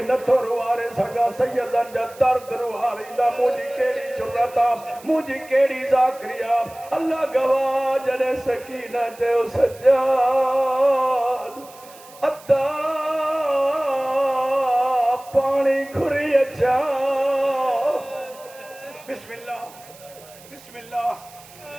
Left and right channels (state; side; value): noise; right; hiss, 22 dB below the sound